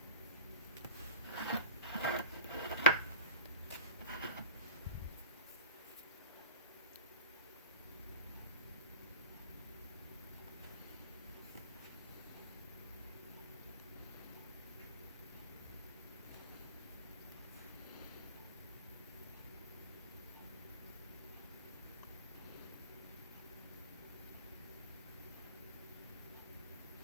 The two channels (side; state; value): both; inverted; correlation -0.32